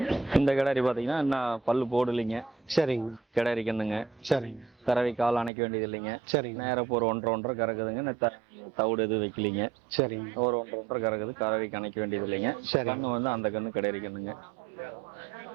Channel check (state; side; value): drops out; left; at 5.5 s